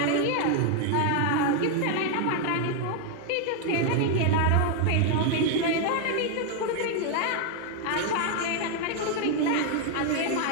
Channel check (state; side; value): different; both; correlation 0.00